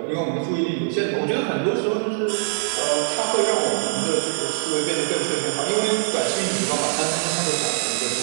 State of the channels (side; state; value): left; silent; digital silence